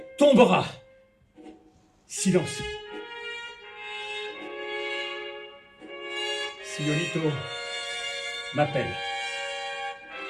tombera. Silence. Sionito m'appelle.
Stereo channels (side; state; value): both; identical; correlation 1.00